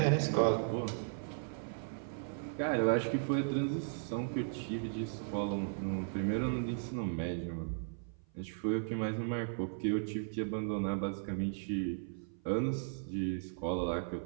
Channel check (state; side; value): silent; left; 54 dB below the other